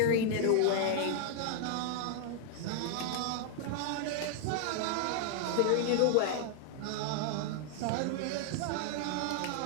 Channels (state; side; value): different; both; correlation 0.00